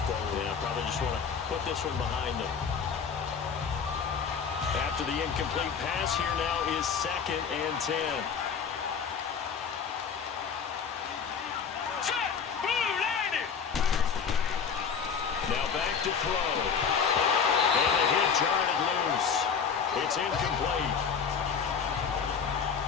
forward. Yeah, probably just want to put this one behind them. After the incomplete pass, here now is 2nd and 10. Now back to throw. And the hit jarred it loose. It's incomplete.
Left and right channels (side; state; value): right; quieter; 6.5 dB